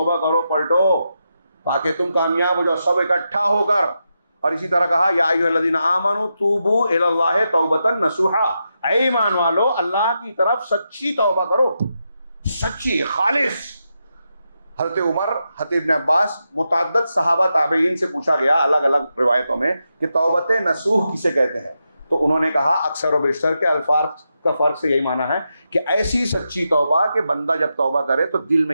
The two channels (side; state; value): both; inverted; correlation -0.86